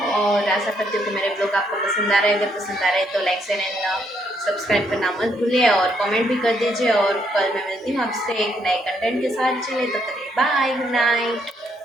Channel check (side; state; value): both; normal; correlation 0.73